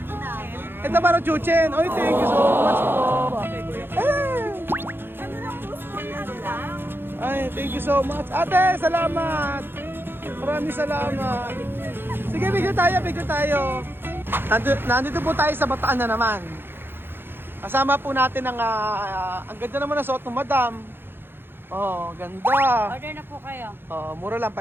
ito para Chuchen. Oy, thank you so much po. Ay, thank you so much. Ate, salamat. Maraming salamat. Sige, bigyan tayo. Nandito po tayo sa Bataan na naman. Kasama po natin ang ganda naman na suot ng madam. Oh, ganda. Order na po kayo. Oh, mura lang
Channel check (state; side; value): late; left; 0.10 ms